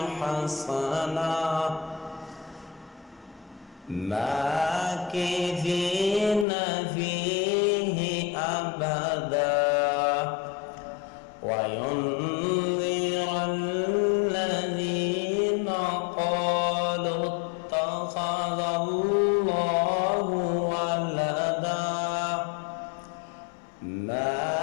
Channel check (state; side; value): drops out; right; at 6.5 s